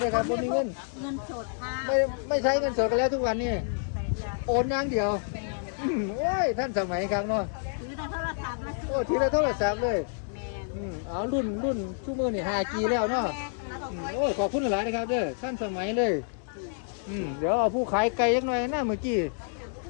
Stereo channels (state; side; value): silent; right; digital silence